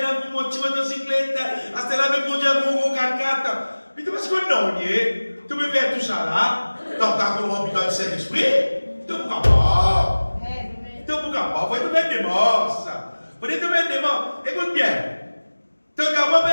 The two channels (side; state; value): both; inverted; correlation -1.00